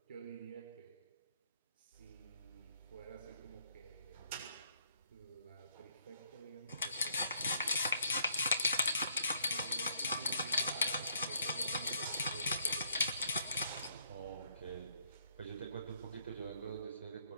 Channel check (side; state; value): both; inverted; correlation -0.69